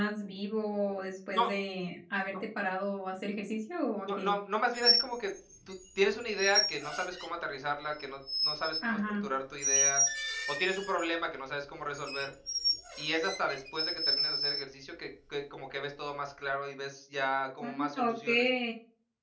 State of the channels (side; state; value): both; identical; correlation 1.00